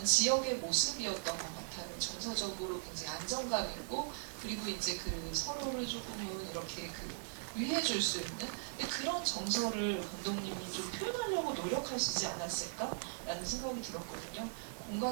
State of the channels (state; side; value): silent; left; 52 dB below the other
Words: 지역의 모습이었던 것 같아요. 정서적으로 굉장히 안정감 있고, 그리고 이제 그 서로를 조금은 이렇게 그 위해줄 수 있는, 근데 그런 정서를 감독님이 좀 표현하려고 노력하시지 않았을까라는 생각이 들었거든요.